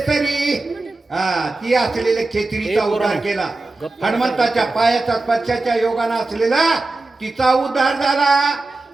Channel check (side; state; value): left; quieter; 3.2 dB